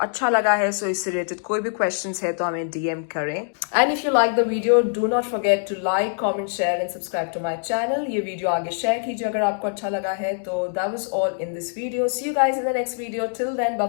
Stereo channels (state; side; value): silent; right; digital silence